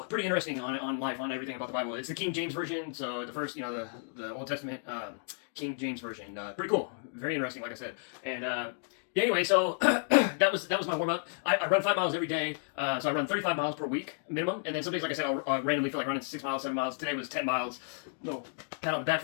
pretty interesting on life, on everything about the Bible. It's the King James version, so the first, you know, the Old Testament King James version. Pretty cool, very interesting, like I said. And yeah, anyway, so that was my warm up. I run 5 miles every day, so I run 35 miles per week minimum. And then some days, like I said, I'll randomly feel like running 6 miles, 7 miles. Today was 10 miles. No pat on the back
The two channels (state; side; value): silent; right; digital silence